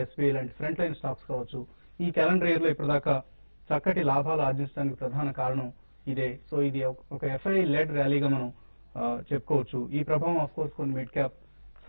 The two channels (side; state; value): both; inverted; correlation -1.00